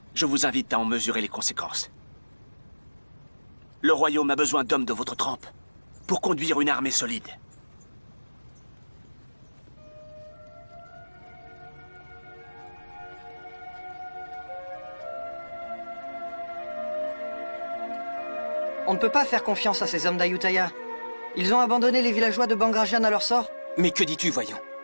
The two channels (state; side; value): inverted; both; correlation -1.00